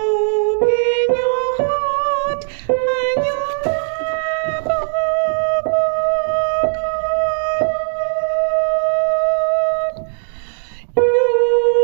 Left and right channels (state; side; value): silent; left; digital silence